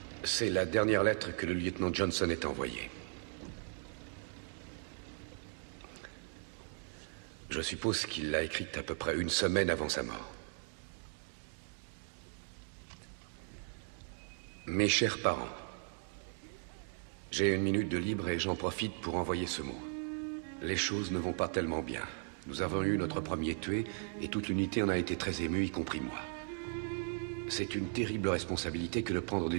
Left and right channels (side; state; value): left; silent; 53 dB below the other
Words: C'est la dernière lettre que le lieutenant Johnson ait envoyée. Je suppose qu'il l'a écrite à peu près une semaine avant sa mort. Mes chers parents, j'ai une minute de libre et j'en profite pour envoyer ce mot. Les choses ne vont pas tellement bien. Nous avons eu notre premier tué et toute l'unité en a été très émue, y compris moi. C'est une terrible responsabilité que de prendre